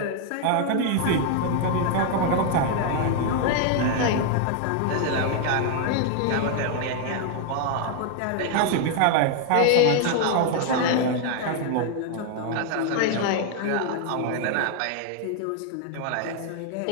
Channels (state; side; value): different; both; correlation 0.00